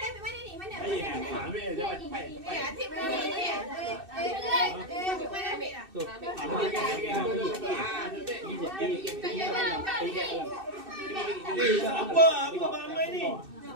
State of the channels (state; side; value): late; left; 2.6 ms